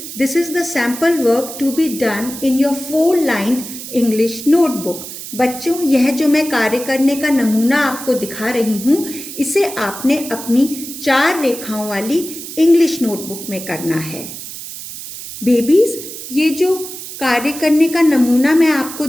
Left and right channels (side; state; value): right; noise; hiss, 11 dB below the sound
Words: this is the sample work to be done in your 4-lined English notebook. बच्चों, यह जो मैं कार्य करने का नमूना आपको दिखा रही हूँ, इसे आपने अपनी 4 रेखाओं वाली इंग्लिश नोटबुक में करना है. बेबीज, ये जो कार्य करने का नमूना मैं आपको